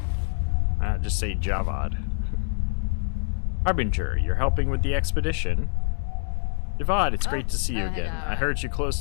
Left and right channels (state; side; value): silent; right; 61 dB below the other